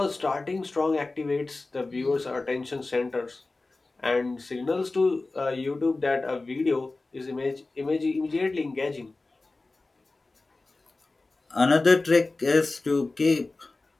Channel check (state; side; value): quieter; right; 3.3 dB